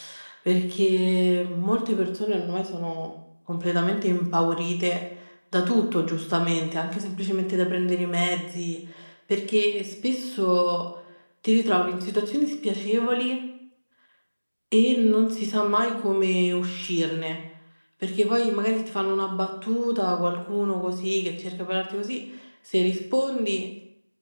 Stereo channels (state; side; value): inverted; both; correlation -1.00